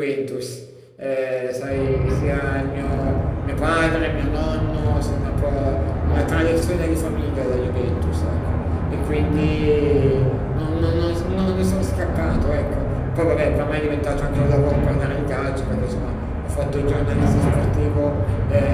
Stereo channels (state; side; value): identical; both; correlation 1.00